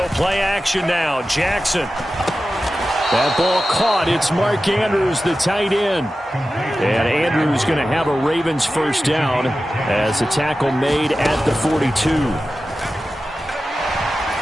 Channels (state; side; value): normal; both; correlation 0.93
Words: play action now. Jackson. That ball caught. It's Mark Andrews, the tight end. And Andrews going to have a Ravens first down as a tackle made at the 42.